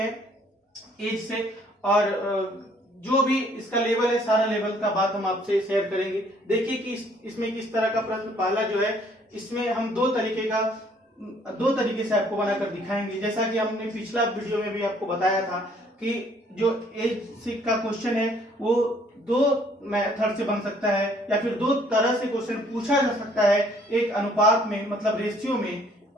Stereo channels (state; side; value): normal; both; correlation 0.61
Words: एज से, और जो भी इसका लेवल है सारा लेवल का बात हम आपसे शेयर करेंगे। देखिए कि इसमें किस तरह का प्रश्न पहला जो है इसमें हम दो तरीके से आपको बनाकर दिखाएंगे। जैसा कि हमने पिछला वीडियो में भी आपको बताया था कि जो एज का क्वेश्चन है वो दो मेथड से बन सकता है या फिर दो तरह से क्वेश्चन पूछा जा सकता है, एक अनुपात में मतलब रेशियो में